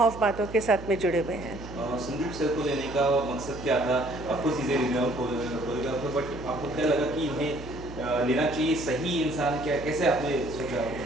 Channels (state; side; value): noise; right; hum, 13 dB below the sound